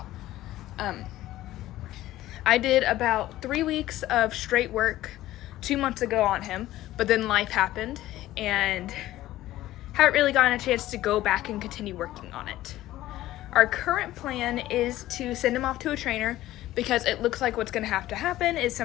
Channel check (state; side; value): quieter; right; 15.1 dB